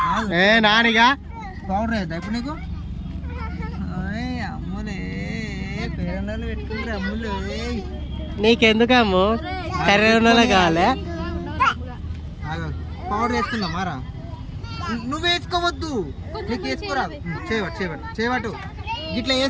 నానిగా పౌడర్ అవుతా ఇప్పుడు నీకు. అమ్ములే పేరెండాలు పెట్టుకుంటారు అమ్ములు. నీకెందుకమ్ము కర్రెలో కావాలి. పౌడర్ వేసుకుందాం మారా. నువ్వు వేసుకోవద్దు, నీకు వేసుకోరాదు. చేయబట్టు ఇట్లా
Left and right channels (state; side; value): identical; both; correlation 1.00